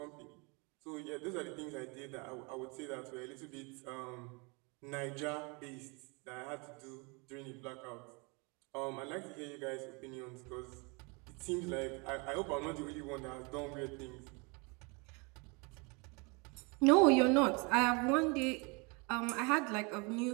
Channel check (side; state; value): left; quieter; 30.5 dB